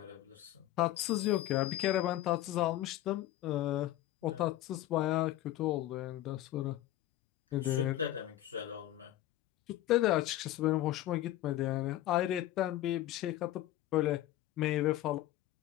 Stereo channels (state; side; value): quieter; right; 14.2 dB